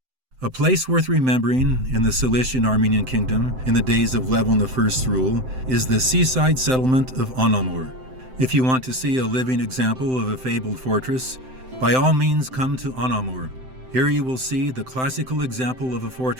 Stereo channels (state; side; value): late; left; 7.8 ms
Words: A place worth remembering in the Cilician Armenian kingdom in the days of Levon I's rule is the seaside settlement of Anamur. If you want to see a living example of a fabled fortress, by all means come to Anamur. Here you will see the classical example of a